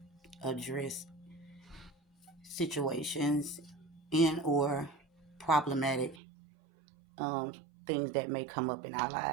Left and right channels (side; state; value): left; drops out; at 6.2 s